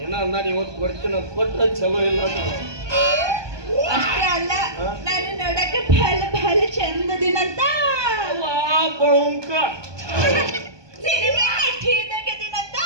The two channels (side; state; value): left; late; 1.2 ms